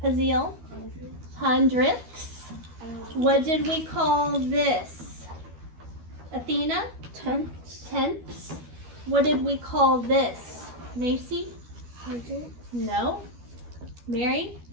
Haziel? Hundredths. What did we call this? Athena? Tenths. What did we call this? Macy? Hundredths. No. Mary?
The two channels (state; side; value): late; left; 12 ms